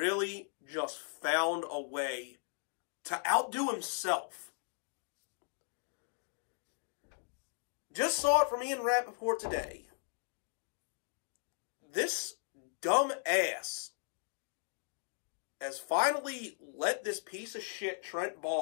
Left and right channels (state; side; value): silent; right; digital silence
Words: just found a way to outdo himself. Just saw it from Ian Rappaport today. This dumb ass has finally let this piece of shit Trent